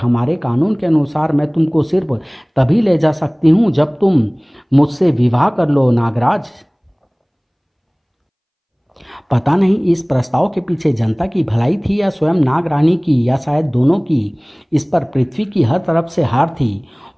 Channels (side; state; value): both; identical; correlation 1.00